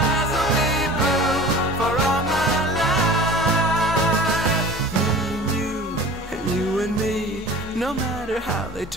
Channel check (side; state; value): both; normal; correlation 0.41